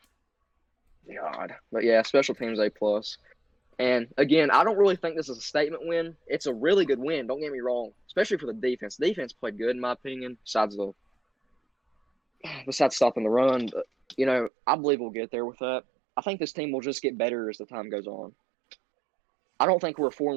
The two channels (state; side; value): drops out; left; at 14.5 s